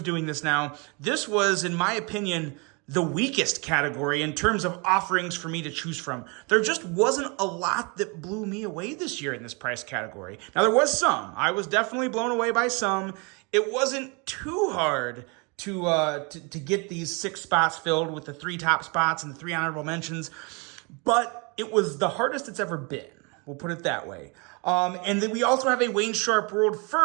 doing this now, this was, in my opinion, the weakest category in terms of offerings for me to choose from. There just wasn't a lot that blew me away this year in this price category. Now, there was some. I was definitely blown away by some. It wasn't too hard to get these 6 spots filled with the 3 top spots and the 3 honorable mentions, but it was the hardest it's ever been. We'll put it that way. And then we also have a Wayne Sharp World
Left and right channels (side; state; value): left; quieter; 31.1 dB